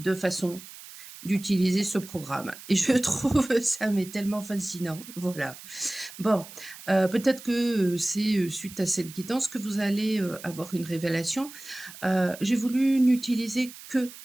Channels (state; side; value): noise; right; hiss, 16 dB below the sound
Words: façons d'utiliser ce programme et je trouve ça mais tellement fascinant, voilà. Bon, peut-être que, c'est, suite à cette guidance que vous allez, avoir une révélation. J'ai voulu n'utiliser que